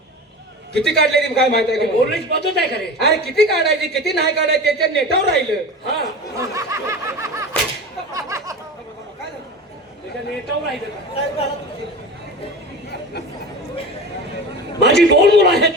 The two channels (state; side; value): normal; both; correlation 0.31